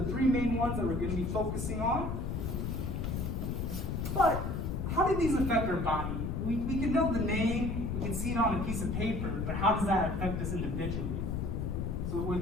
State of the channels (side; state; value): left; noise; rumble, 2 dB below the sound